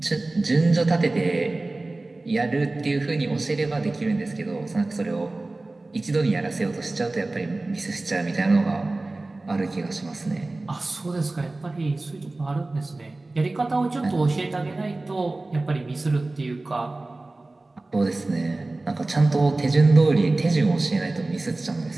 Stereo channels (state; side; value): quieter; left; 3.0 dB